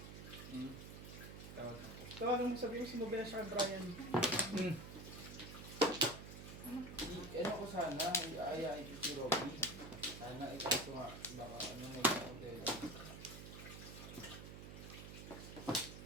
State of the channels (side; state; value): right; noise; hum, 11 dB below the sound